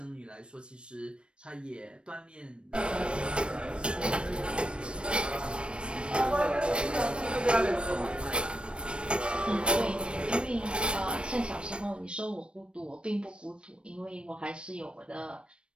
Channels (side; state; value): left; late; 0.057 ms